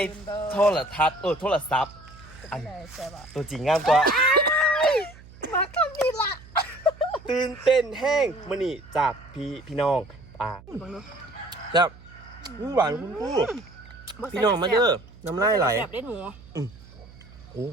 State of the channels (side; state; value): right; noise; hum, 20 dB below the sound